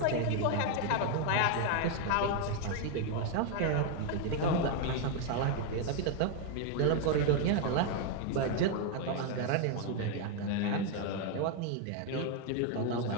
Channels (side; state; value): both; different; correlation 0.01